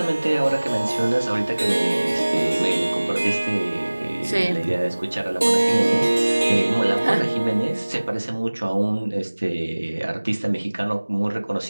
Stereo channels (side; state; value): both; inverted; correlation -1.00